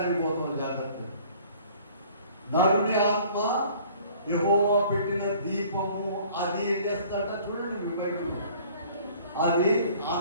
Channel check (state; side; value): inverted; both; correlation -0.53